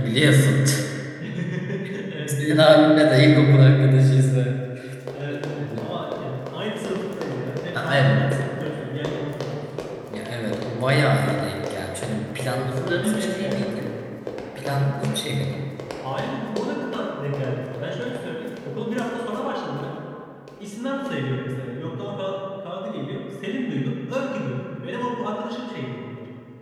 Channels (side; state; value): both; identical; correlation 1.00